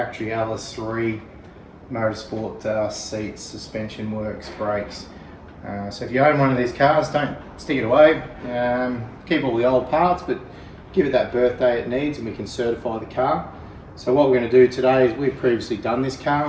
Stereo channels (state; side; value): identical; both; correlation 1.00